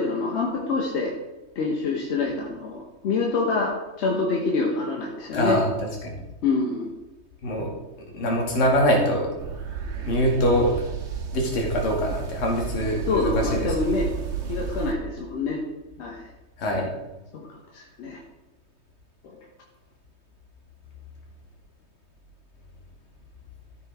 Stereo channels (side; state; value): right; late; 3.2 ms